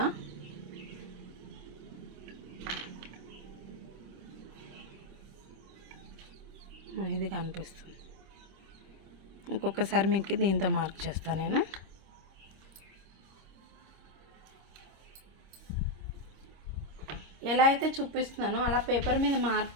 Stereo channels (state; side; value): late; left; 26 ms